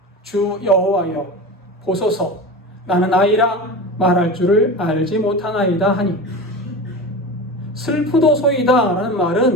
주 여호와여 보소서, 나는 아이라 말할 줄을 알지 못하나이다 하니. 슬프도소이다 라는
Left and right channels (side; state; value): both; normal; correlation 0.28